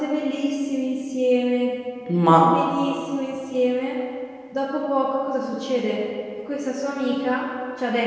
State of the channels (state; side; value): identical; both; correlation 1.00